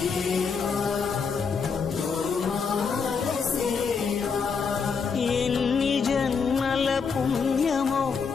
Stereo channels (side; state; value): right; quieter; 5.6 dB